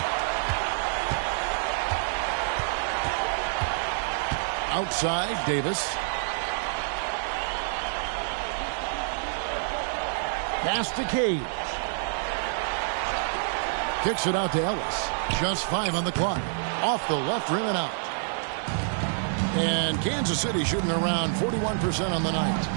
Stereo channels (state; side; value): silent; left; 60 dB below the other